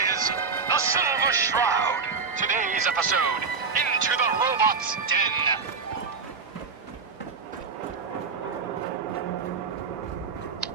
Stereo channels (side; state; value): left; quieter; 5.1 dB